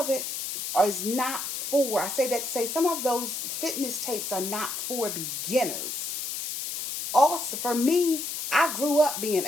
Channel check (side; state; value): left; noise; hiss, 4 dB below the sound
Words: it is not for, I say that to say some of those fitness tapes are not for beginners. Also, for me, I grew up being